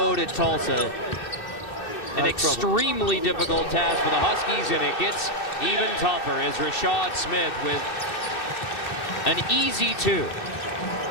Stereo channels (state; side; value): late; right; 2.7 ms